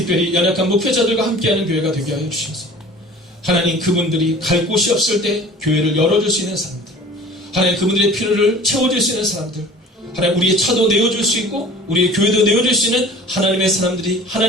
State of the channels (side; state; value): both; normal; correlation 0.44